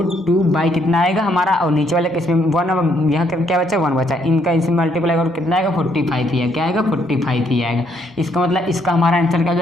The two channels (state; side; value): normal; both; correlation 0.71